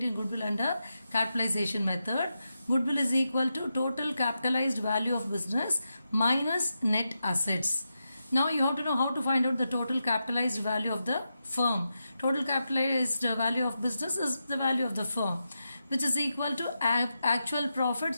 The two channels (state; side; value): inverted; both; correlation -0.88